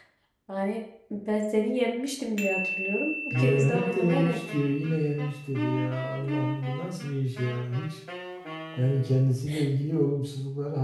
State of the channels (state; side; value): identical; both; correlation 1.00